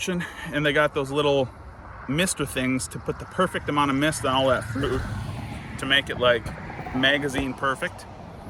and they got those little mister things to put the perfect amount of mist on all that fruit to make it like magazine perfect.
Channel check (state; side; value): identical; both; correlation 1.00